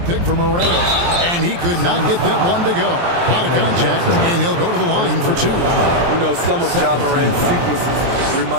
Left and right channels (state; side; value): late; left; 23 ms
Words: for Morant, and he could not get that one to go. Out of contact, and he'll go to the line for two. You know, some of Ja Morant's sequences